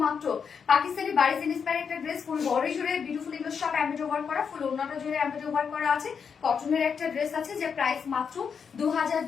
পাকিস্তানি বারিজ ইন্সপায়ার একটা ড্রেস, ফুল বডি জুড়ে বিউটিফুল এগুলো সব এমব্রয়ডারি ওয়ার্ক করা, ফুল ওড়নাটা জুড়ে এমব্রয়ডারি ওয়ার্ক করা আছে। কটনের একটা ড্রেস আছে যার প্রাইস মাত্র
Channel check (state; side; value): quieter; right; 6.5 dB